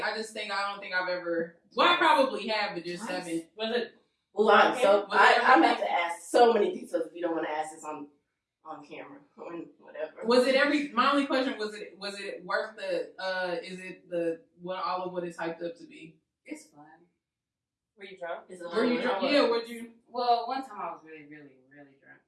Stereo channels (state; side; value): identical; both; correlation 1.00